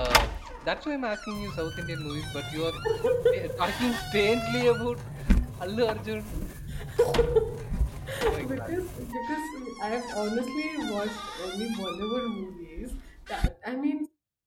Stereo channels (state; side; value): identical; both; correlation 1.00